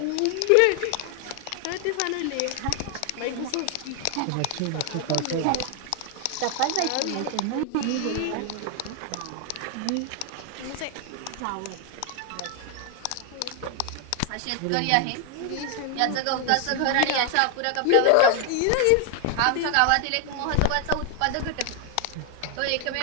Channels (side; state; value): both; different; correlation 0.00